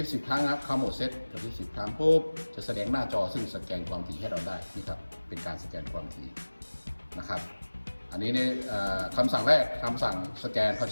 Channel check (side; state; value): both; inverted; correlation -1.00